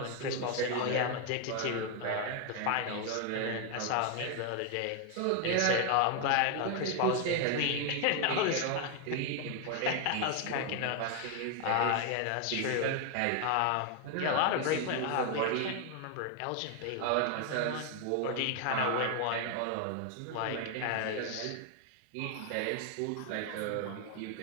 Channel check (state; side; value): different; both; correlation 0.01